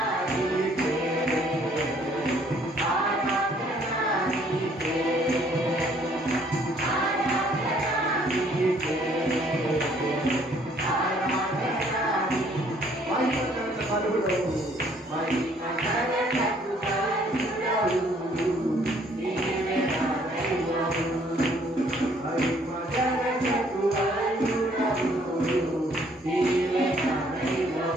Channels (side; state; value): both; normal; correlation 0.62